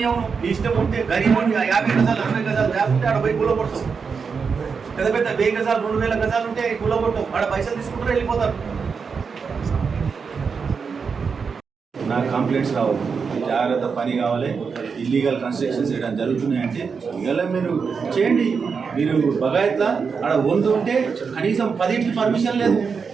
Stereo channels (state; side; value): quieter; left; 5.6 dB